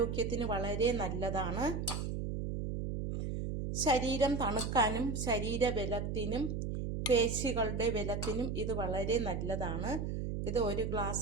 വളരെ നല്ലതാണ്. ശരീരം തണുക്കാനും ശരീരബലത്തിനും പേശികളുടെ ബലത്തിനും ഇത് വളരെ നല്ലതാണ്. ഇത് ഒരു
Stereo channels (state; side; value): noise; right; hum, 2 dB below the sound